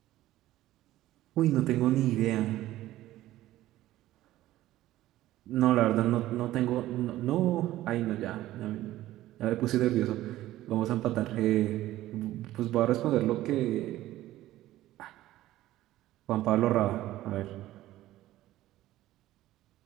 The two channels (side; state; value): left; quieter; 15.1 dB